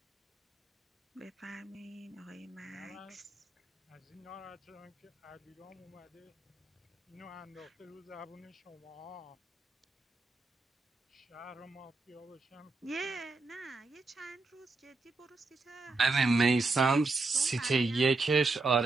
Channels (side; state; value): left; quieter; 3.5 dB